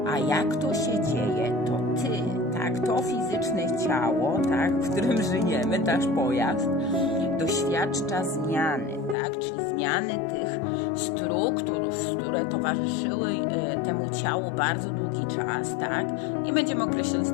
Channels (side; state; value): right; drops out; at 9.2 s